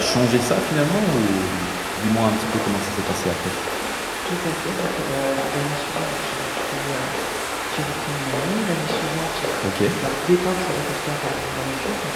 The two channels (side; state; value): both; identical; correlation 1.00